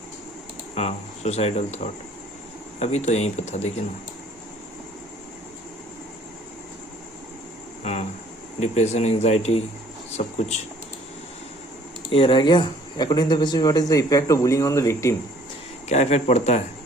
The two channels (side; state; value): both; normal; correlation 0.57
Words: हाँ, सुसाइडल थॉट। अभी तो यहीं पे था, देखिए ना। हाँ, डिप्रेशन, एंजाइटी, सब कुछ ये रह गया। According to the basis, what is the effect of bullying on the victim? क्या इफेक्ट पड़ता है?